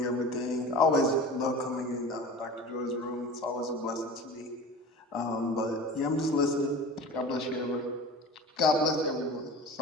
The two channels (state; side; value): normal; both; correlation 0.36